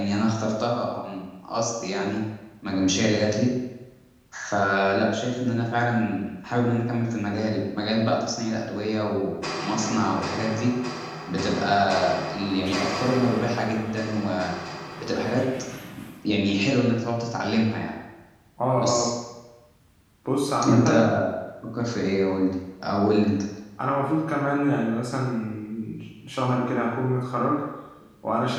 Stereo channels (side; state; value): both; identical; correlation 1.00